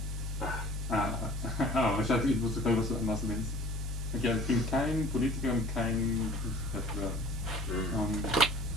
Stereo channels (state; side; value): normal; both; correlation 0.47